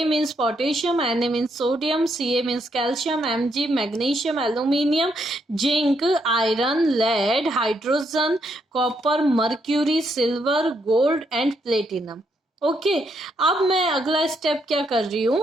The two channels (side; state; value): both; normal; correlation 0.76